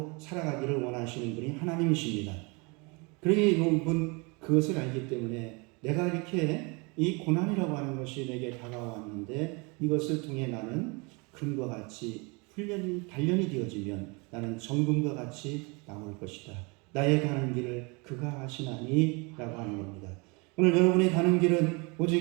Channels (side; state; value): left; quieter; 29.5 dB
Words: 살아가기를 원하시는 분이 하나님이십니다. 그러니 여러분 그것을 알기 때문에 내가 이렇게 이 고난이라고 하는 것이 내게 다가왔는데 이것을 통해 나는 금과 같이 단련이 되어지면 나는 정금과 같이 나올 것이다. 나의 가는 길을 그가 하시나니 라고 하는 겁니다. 오늘 여러분이 가는 길은